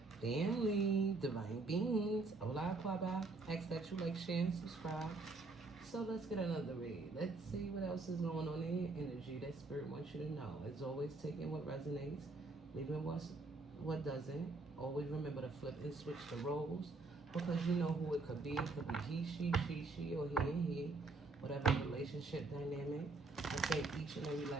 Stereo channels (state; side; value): quieter; left; 3.5 dB